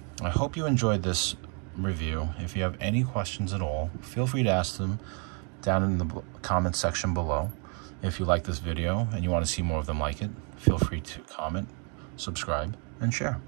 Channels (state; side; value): quieter; left; 38.1 dB